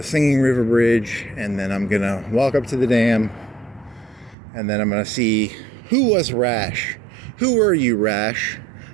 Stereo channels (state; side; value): drops out; left; at 4.4 s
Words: Singing River Bridge, and then I'm going to walk up to the dam, and then I'm going to see who was Rash. Who were you, Rash,